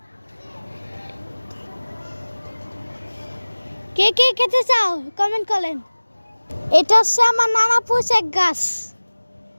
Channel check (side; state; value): both; inverted; correlation -1.00